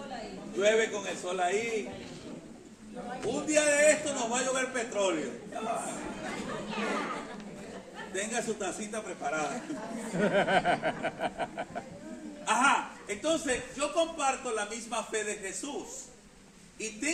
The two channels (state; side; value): identical; both; correlation 1.00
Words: Llueve con el sol ahí. Un día de esto nos va a llover petróleo. Tenga su tacita preparada. Ajá, entonces yo comparto la misma fe de Jesús y